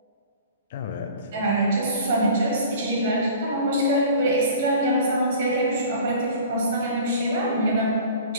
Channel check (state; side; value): inverted; both; correlation -0.44